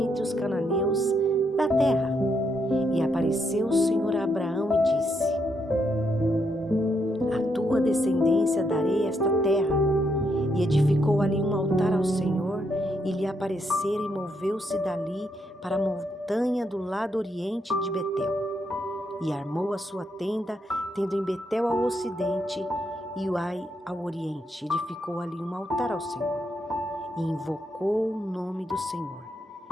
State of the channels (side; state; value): both; normal; correlation 0.78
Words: os cananeus da terra. E apareceu o Senhor a Abraão e disse: à tua descendência darei esta terra. E edificou ali um altar ao Senhor, e lhe aparecera, e moveu-se dali para a montanha do lado oriente de Betel. E armou a sua tenda, tendo em Betel ao ocidente e Ai ao oriente. Edificou ali um altar ao Senhor, e invocou o nome do Senhor.